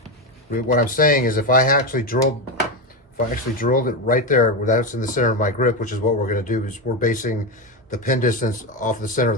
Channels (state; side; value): normal; both; correlation 0.12